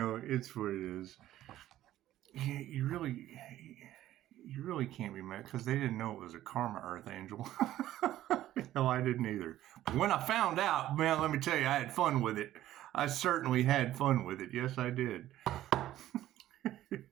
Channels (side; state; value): left; quieter; 13.6 dB